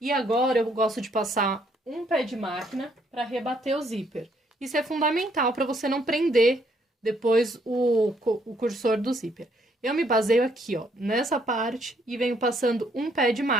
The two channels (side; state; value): both; normal; correlation 0.69